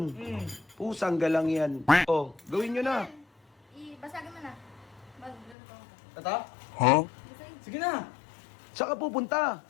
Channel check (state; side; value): drops out; right; at 5.6 s